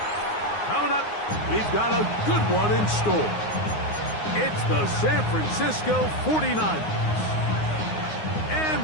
Coming up, we've got a good one in store. It's the San Francisco 49ers and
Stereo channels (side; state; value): right; late; 9.6 ms